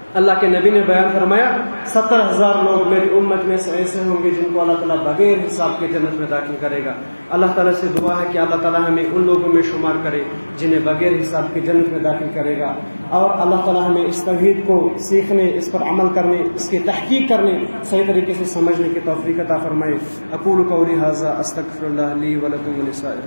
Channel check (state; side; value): inverted; both; correlation -1.00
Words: اللہ کے نبی نے بیان فرمایا 70,000 لوگ میری امت میں سے ایسے ہوں گے جن کو اللہ تعالیٰ بغیر حساب کے جنت میں داخل کرے گا۔ اللہ تعالیٰ سے دعا ہے کہ اللہ تعالیٰ ہمیں ان لوگوں میں شمار کرے جنہیں بغیر حساب کے جنت میں داخل کرے گا، اور اللہ تعالیٰ ہمیں اس توحید کو سیکھنے، اس پر عمل کرنے، اس کی تحقیق کرنے، صحیح طریقے سے سمجھنے کی توفیق عطا فرمائے۔ اقول قولی ھذا استغفر اللہ لی ولکم